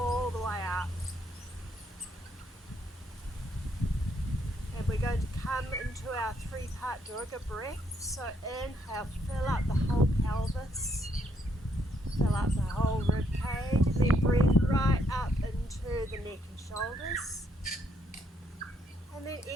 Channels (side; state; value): both; normal; correlation 0.73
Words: the way up. And we're going to come into our three-part Durga breath. So inhale, fill up the whole pelvis, fill up the whole rib cage, and then breathe right up into the neck and shoulders. And then